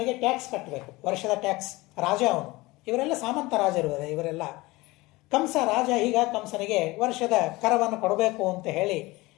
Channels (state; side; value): quieter; right; 21.3 dB